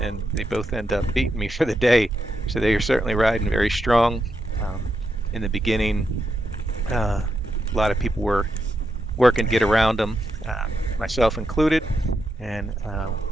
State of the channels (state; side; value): normal; both; correlation 0.83